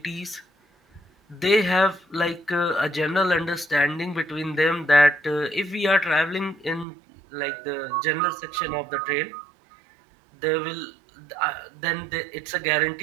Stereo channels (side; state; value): left; drops out; at 6.9 s